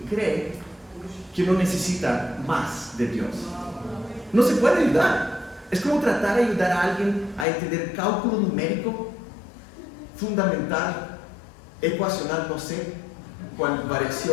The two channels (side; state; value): right; drops out; at 7.5 s